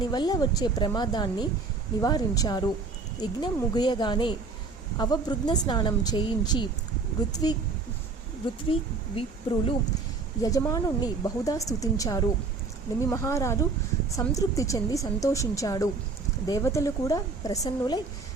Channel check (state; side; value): quieter; left; 4.1 dB